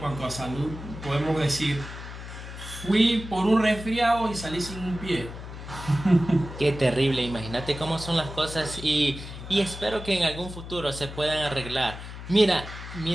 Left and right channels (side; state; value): left; noise; hum, 11 dB below the sound